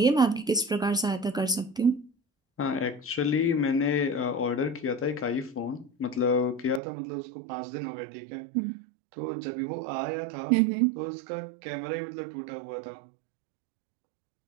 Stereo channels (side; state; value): left; drops out; at 6.8 s